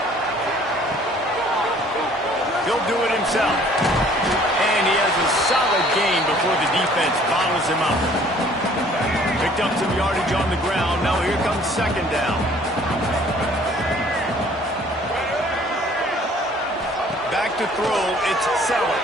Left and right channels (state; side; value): normal; both; correlation 0.56